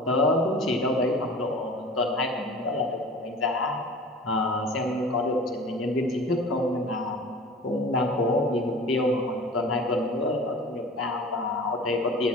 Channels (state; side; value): normal; both; correlation 0.40